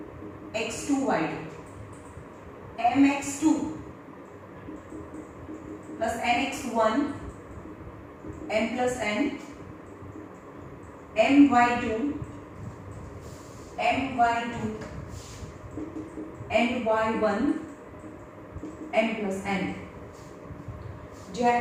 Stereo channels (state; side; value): identical; both; correlation 1.00